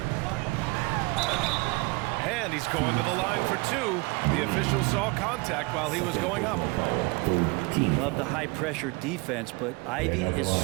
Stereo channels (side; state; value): left; quieter; 26.3 dB